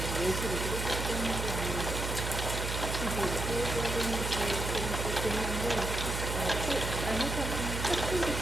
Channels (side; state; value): right; noise; hum, 3 dB below the sound